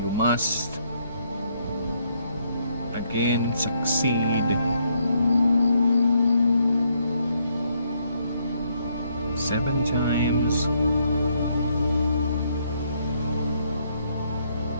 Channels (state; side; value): inverted; both; correlation -0.72